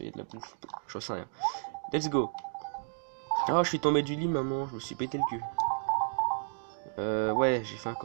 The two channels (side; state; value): left; silent; digital silence